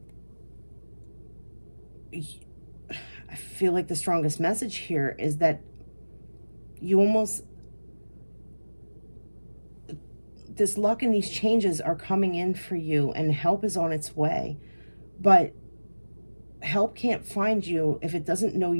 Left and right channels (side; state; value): both; inverted; correlation -1.00